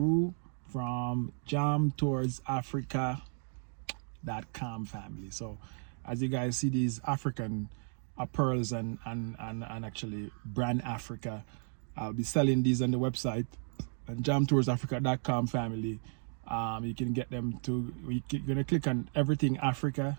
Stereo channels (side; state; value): left; silent; 55 dB below the other